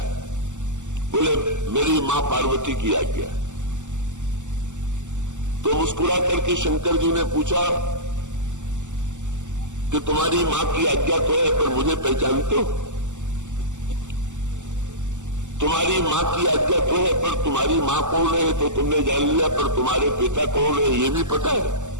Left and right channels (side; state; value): left; late; 0.85 ms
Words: बोले मेरी मां पार्वती की आज्ञा। तो मुस्कुरा करके शंकर जी ने पूछा कि तुम्हारी मां की आज्ञा तो है पर मुझे पहचानते हो? तुम्हारी मां की आज्ञा तो है पर तुम्हारी मां कौन है तो तुमने जान लिया, पर तुम्हारे पिता कौन है ये भी पता है?